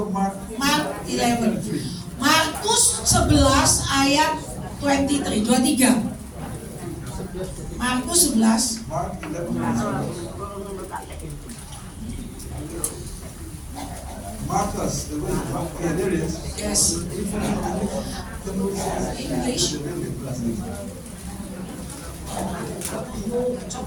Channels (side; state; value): both; identical; correlation 1.00